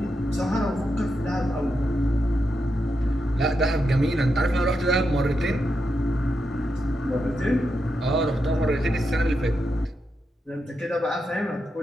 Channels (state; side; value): normal; both; correlation 0.85